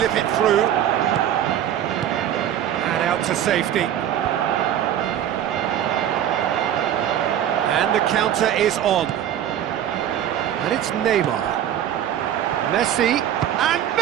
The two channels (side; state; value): left; quieter; 10.6 dB